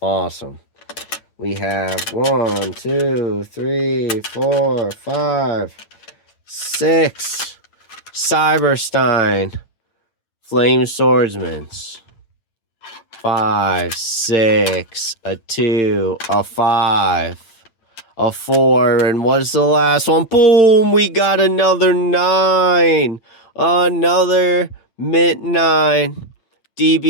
Awesome. We have 1, 2, 3, 4, 5, 6. Cyberstein. Flame Swordsman's. 5, 6, a 2, a 5, a 4, and what's the last one? Boom! We got another 9. Another mint 9.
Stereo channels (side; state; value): right; late; 8.9 ms